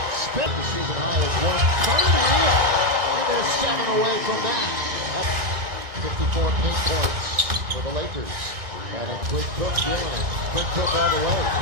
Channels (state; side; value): late; left; 1.9 ms